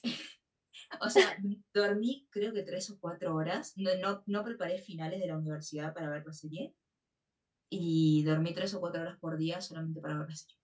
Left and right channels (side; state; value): both; identical; correlation 1.00